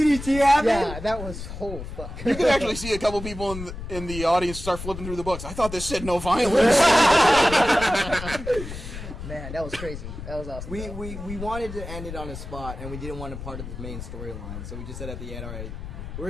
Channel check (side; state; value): left; noise; rumble, 9 dB below the sound